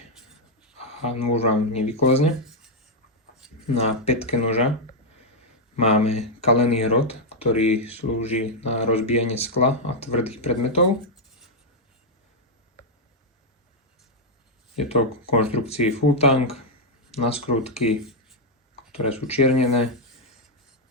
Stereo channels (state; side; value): normal; both; correlation -0.01